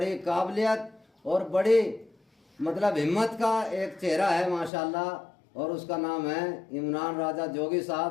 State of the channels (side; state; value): right; drops out; at 4.7 s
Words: काबिलियत और बड़ी मतलब हिम्मत का एक चेहरा है माशाल्लाह, और उसका नाम है इमरान राजा जोगी